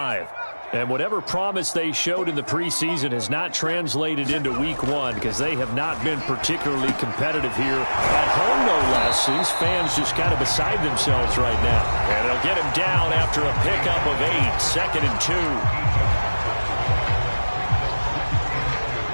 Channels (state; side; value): inverted; both; correlation -1.00